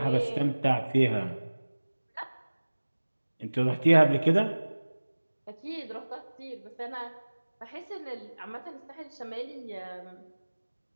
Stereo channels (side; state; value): both; inverted; correlation -1.00